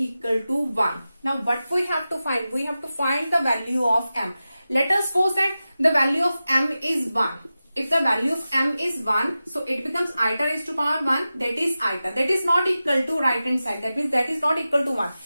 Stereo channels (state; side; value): inverted; both; correlation -0.94